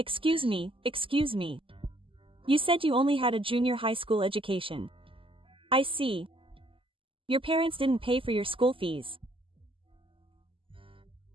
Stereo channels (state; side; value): late; left; 0.25 ms